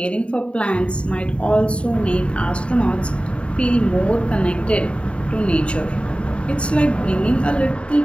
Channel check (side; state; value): right; late; 0.058 ms